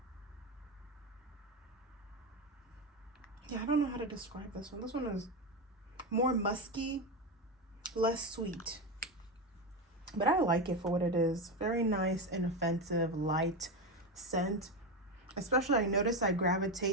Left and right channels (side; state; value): both; normal; correlation 0.14